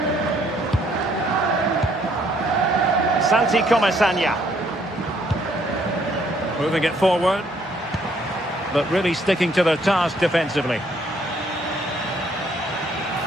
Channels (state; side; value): normal; both; correlation 0.66